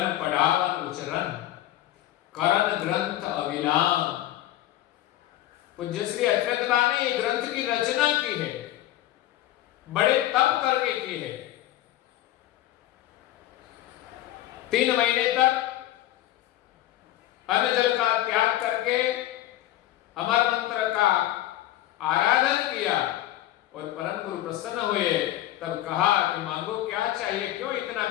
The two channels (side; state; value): right; quieter; 14.3 dB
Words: पढ़ावन उचरण करण ग्रंथ अविलाम। पूज्य श्री अचरतबा ने ग्रंथ की रचना की है, बड़े तप करके की है। 3 महीने तक अन्न जल का त्याग करके अमर मंत्र का आराधन किया और परम गुरु प्रसन्न हुए। तब कहा कि मांगो क्या चाहिए, क्यों इतना